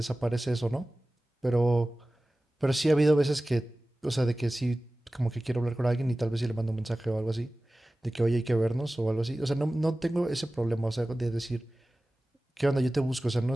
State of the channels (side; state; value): both; normal; correlation 0.97